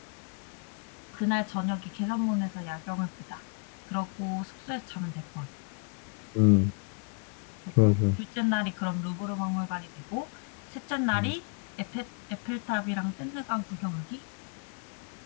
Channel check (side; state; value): right; quieter; 36.4 dB